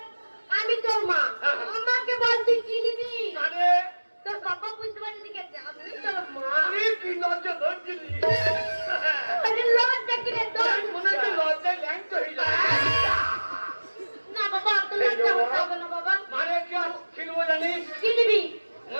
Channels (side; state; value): both; inverted; correlation -1.00